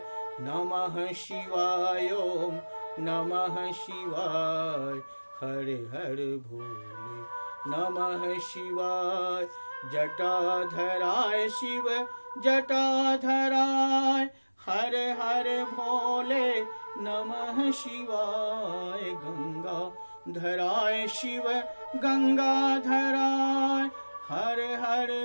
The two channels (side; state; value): both; inverted; correlation -1.00